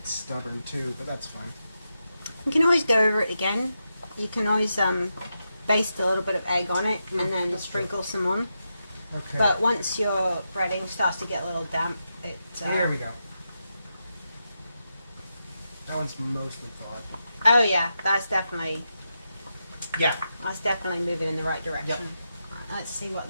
stubborn too, but that's fine. You can always go over it again. You can always baste a little bit of egg on it and then sprinkle some on. Okay. But once your breading starts to get a little damp, it... Here we go. That one's mostly thawed. Oh yeah, that's definitely moving in the right direction. Yep. Right, let's see what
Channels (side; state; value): both; inverted; correlation -0.87